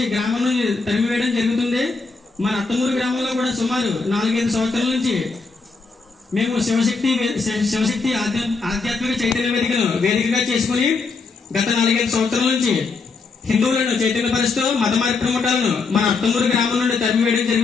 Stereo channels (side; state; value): right; quieter; 4.4 dB